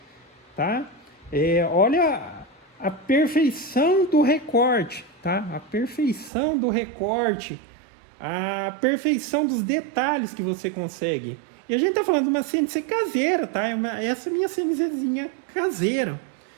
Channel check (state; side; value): drops out; left; at 6.3 s